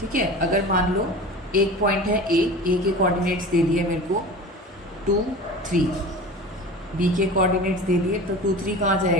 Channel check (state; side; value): normal; both; correlation 0.35